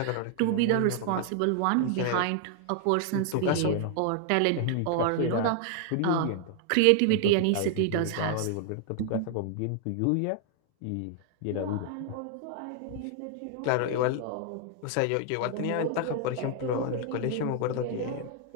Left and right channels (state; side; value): different; both; correlation 0.00